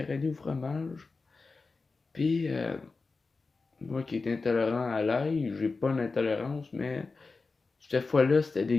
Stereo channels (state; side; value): quieter; right; 4.1 dB